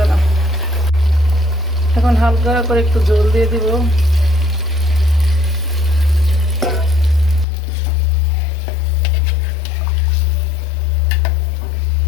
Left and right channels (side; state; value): right; drops out; at 7.5 s